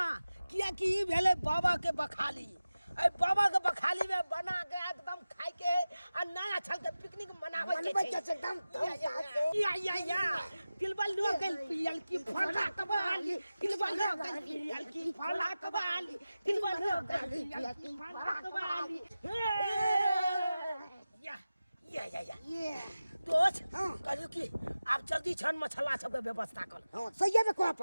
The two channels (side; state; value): both; inverted; correlation -0.95